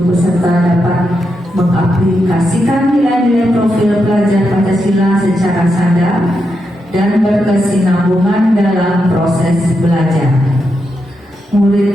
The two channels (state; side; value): normal; both; correlation 0.85